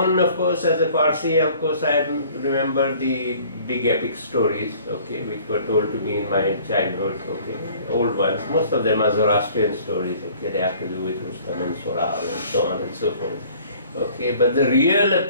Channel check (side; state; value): both; inverted; correlation -0.53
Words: of course, as a Parsi, of course, I remember the big epic stories, okay, which were told to me in my childhood, okay, old ones. Most of them are Zoroastrian stories, okay, they have to do with Rustam and Sohrab and so on and so forth, okay. But the real